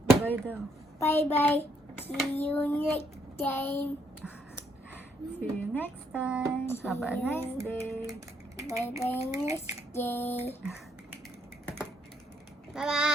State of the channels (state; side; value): normal; both; correlation 0.72